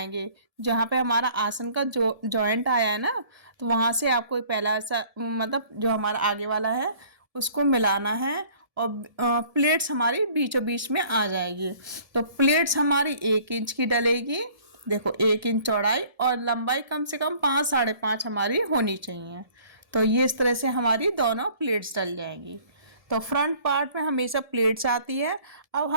जहाँ पे हमारा आसन का जो जॉइंट आया है ना, तो वहाँ से आपको पहला ऐसा मतलब जो हमारा आगे वाला है उसको मिलाना है। और प्लेट्स हमारी बीचों बीच में आ जाएगी। तो प्लेट्स हमारी 1 इंच की डलेगी। देखो, 1 इंच चौड़ाई और लंबाई कम से कम 5 साढ़े 5 हमारी होनी चाहिए। तो ये इस तरह से हमारी दोनों प्लेट्स डल जाएंगी। तो फ्रंट पार्ट में हमेशा प्लेट्स आती है। अब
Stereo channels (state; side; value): late; left; 1.7 ms